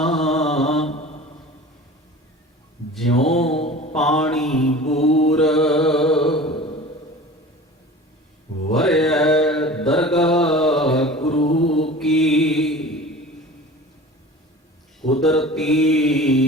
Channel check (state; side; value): normal; both; correlation 0.39